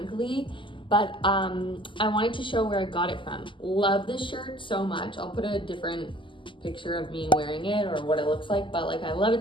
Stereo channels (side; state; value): right; late; 0.25 ms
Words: but I wanted to show where I got it from. Love this shirt so much. I'll put a different picture of me wearing it or what it looks like, but like I love